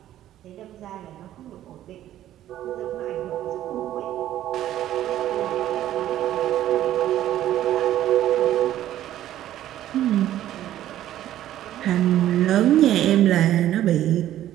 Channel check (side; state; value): left; quieter; 12.7 dB